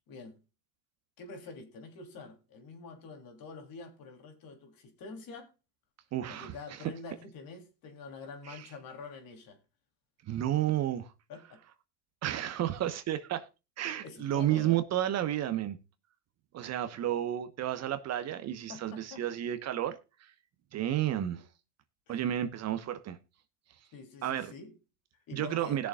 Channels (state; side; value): quieter; left; 10.5 dB